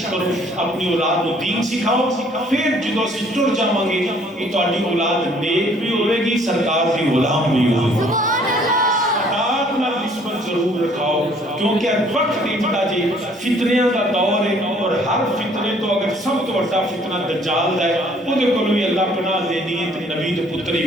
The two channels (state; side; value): normal; both; correlation 0.60